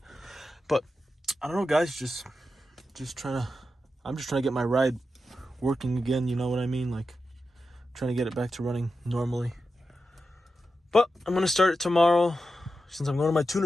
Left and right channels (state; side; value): normal; both; correlation 0.90